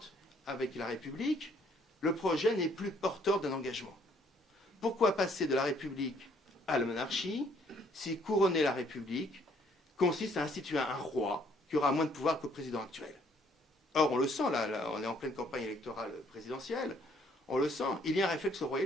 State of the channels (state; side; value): normal; both; correlation 0.64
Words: avec la République, le projet n'est plus porteur d'un engagement. Pourquoi passer de la République à la monarchie si couronner la République consiste à instituer un roi qui aura moins de pouvoir que le président actuel? Or, on le sent, là, on est en pleine campagne électorale présidentielle, on le sent, il y a un réflexe